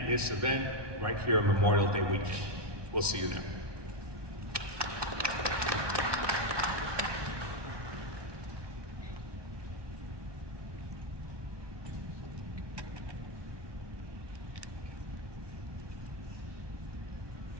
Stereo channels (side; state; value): left; late; 1.2 ms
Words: event right here on Memorial Day weekend. We'll see you there.